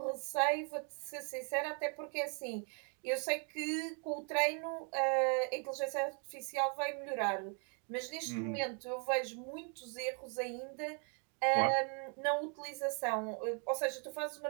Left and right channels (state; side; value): quieter; left; 39.3 dB